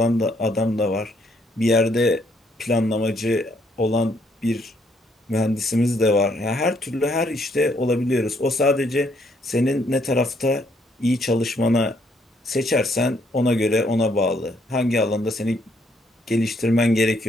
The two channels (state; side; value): normal; both; correlation 0.70